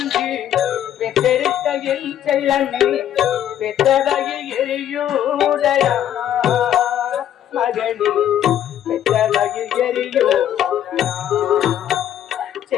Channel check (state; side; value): quieter; right; 10.8 dB